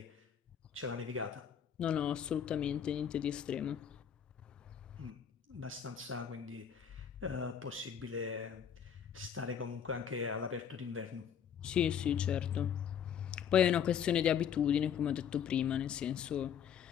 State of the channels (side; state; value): right; quieter; 8.4 dB